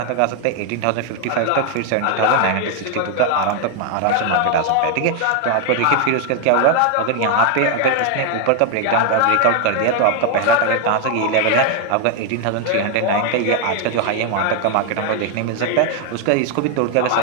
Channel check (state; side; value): different; both; correlation 0.00